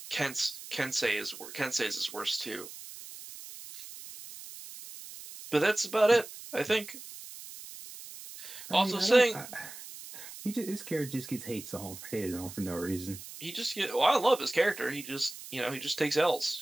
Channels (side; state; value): right; noise; hiss, 13 dB below the sound